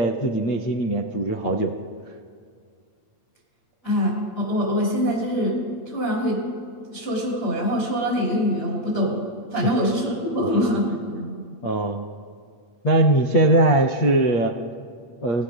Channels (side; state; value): right; late; 8.6 ms